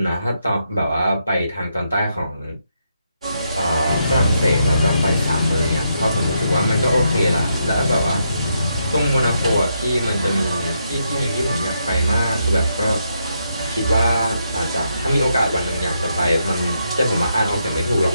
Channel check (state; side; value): inverted; both; correlation -0.80